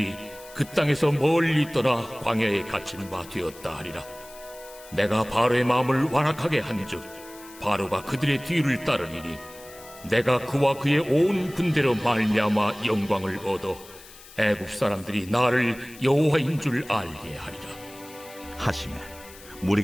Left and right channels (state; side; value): noise; left; hiss, 20 dB below the sound